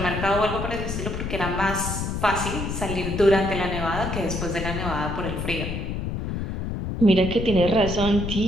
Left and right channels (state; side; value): noise; left; rumble, 4 dB below the sound